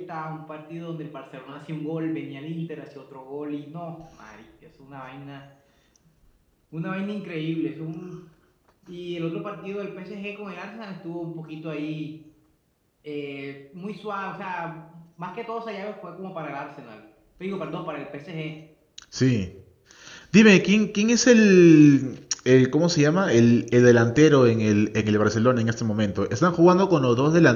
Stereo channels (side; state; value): both; identical; correlation 1.00